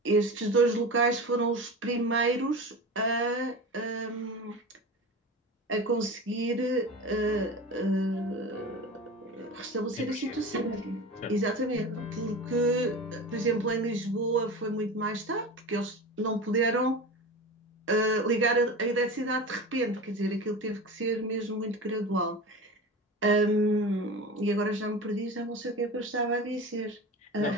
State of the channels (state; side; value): normal; both; correlation 0.30